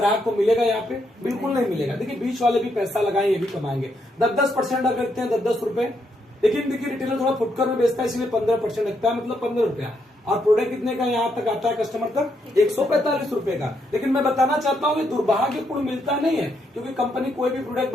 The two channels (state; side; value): normal; both; correlation 0.77